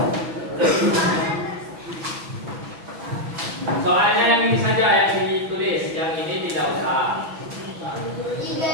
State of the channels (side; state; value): left; late; 6.1 ms